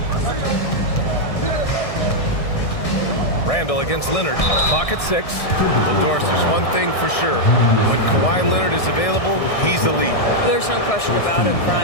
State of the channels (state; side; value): late; right; 1.6 ms